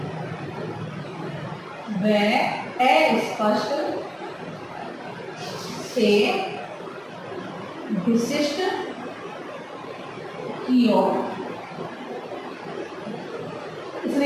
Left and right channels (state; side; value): identical; both; correlation 1.00